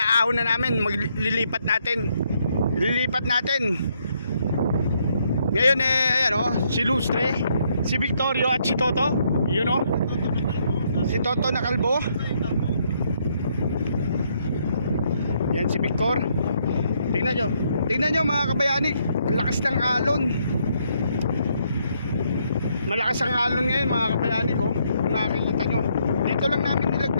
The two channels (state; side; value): inverted; both; correlation -0.73